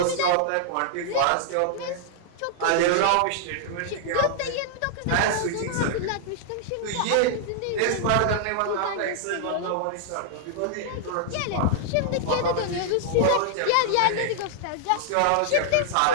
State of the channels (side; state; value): both; different; correlation -0.01